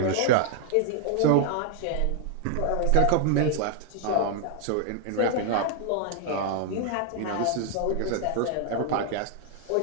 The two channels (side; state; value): both; different; correlation 0.00